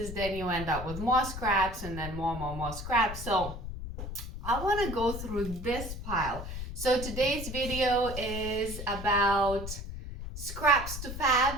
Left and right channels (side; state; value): left; noise; rumble, 8 dB below the sound